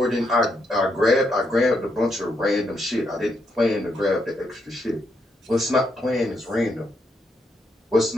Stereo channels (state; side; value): normal; both; correlation 0.78